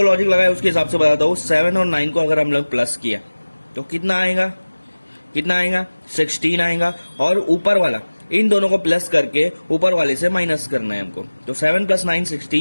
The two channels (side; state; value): both; inverted; correlation -1.00